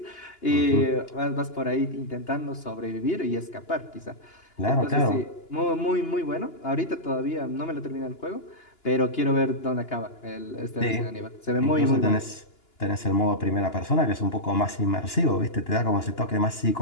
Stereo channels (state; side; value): late; right; 2.9 ms